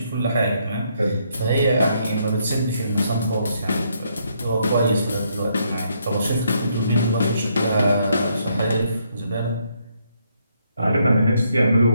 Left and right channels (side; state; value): both; inverted; correlation -0.73